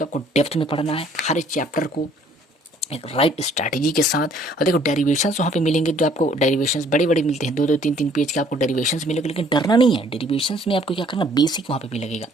आपको डेप्थ में पढ़ना है, हर एक चैप्टर को एक राइट स्ट्रैटेजी के साथ। और देखो डेरिवेशंस वहाँ पे मिलेंगे, जो आपको डेरिवेशंस बड़े बड़े मिलते हैं, 2-2 3-3 पेज के आपको डेरिवेशंस मिलेंगे, लेकिन डरना नहीं है। डेरिवेशंस में आपको क्या करना, बेसिक वहाँ पे भी लगेगा।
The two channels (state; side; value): normal; both; correlation 0.60